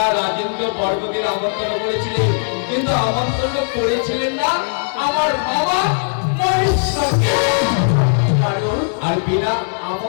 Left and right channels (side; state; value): right; silent; digital silence